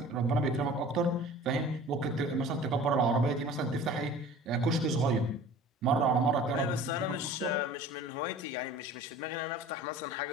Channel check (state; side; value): normal; both; correlation 0.43